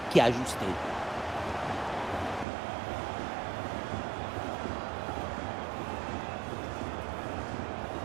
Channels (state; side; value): drops out; left; at 2.5 s